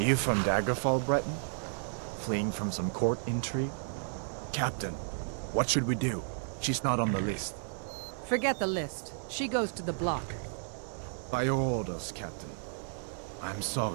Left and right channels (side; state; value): left; silent; 56 dB below the other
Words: You from Daggerfall, Breton? Fleeing from some court intrigue? Captain, what should we do? She's not on the list. Forget the list. She goes to the block. By your orders, Captain. I'm